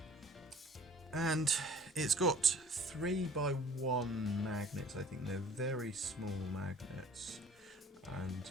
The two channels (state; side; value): normal; both; correlation 0.50